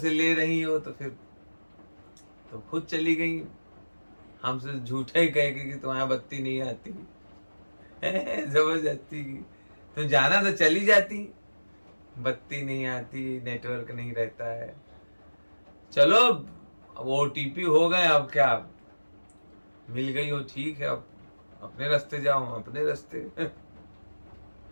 ले रही हो तो फिर तो खुद चली गई, हमसे झूठे ही कह के कि तुम्हारी बत्ती नहीं आती, जबरदस्ती की। तुम जाना तो चली जाती, बत्ती नहीं आती, नेटवर्क नहीं रहता है। चलो अब OTP हो गए, अब क्या, मिल गई हो ठीक है, अब अपने रास्ते जाओ, अपने रास्ते।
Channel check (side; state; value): both; inverted; correlation -1.00